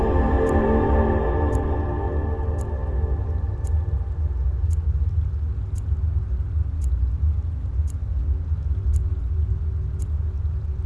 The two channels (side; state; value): both; identical; correlation 1.00